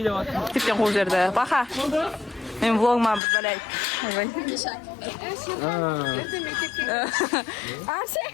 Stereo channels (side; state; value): right; drops out; at 3.2 s